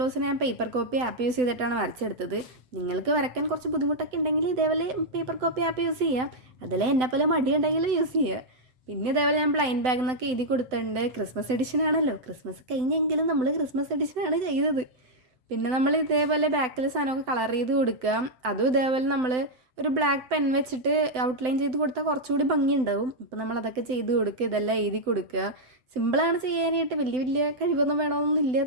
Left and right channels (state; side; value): late; left; 7.9 ms